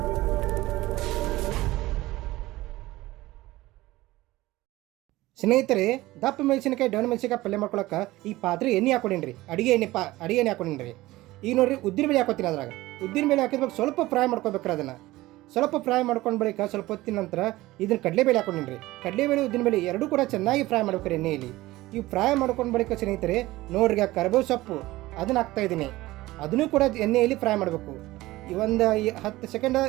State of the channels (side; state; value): left; quieter; 18.2 dB